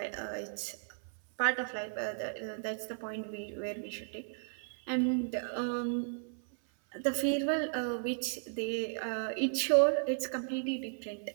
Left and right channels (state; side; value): silent; left; 55 dB below the other